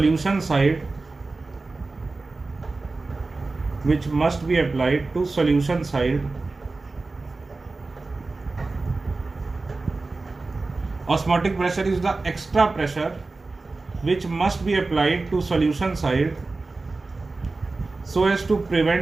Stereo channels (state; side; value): quieter; left; 3.6 dB